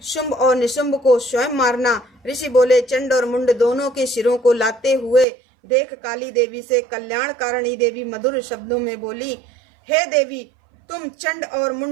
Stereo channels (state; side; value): drops out; left; at 5.2 s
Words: शुंभ और निशुंभ को स्वयं मारना। ऋषि बोले। चंड और मुंड दोनों के सिरों को लाते हुए देख काली देवी से कल्याणकारिणी देवी मधुर शब्दों में बोली, हे देवी, तुम चंड और